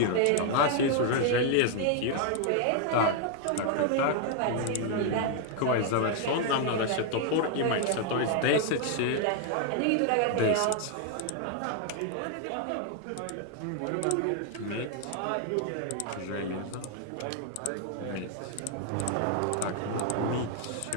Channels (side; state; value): both; different; correlation 0.00